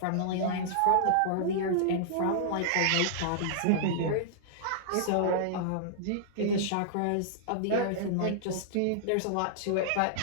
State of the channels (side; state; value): both; different; correlation -0.02